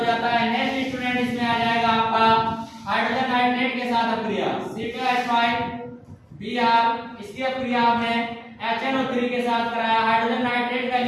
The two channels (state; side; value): identical; both; correlation 1.00